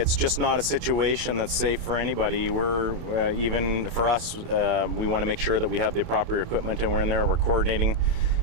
just not a situation that's safe for anybody. We're even for us, we want to make sure that we have the proper equipment and we're in there. We're coordinating.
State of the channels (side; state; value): left; late; 28 ms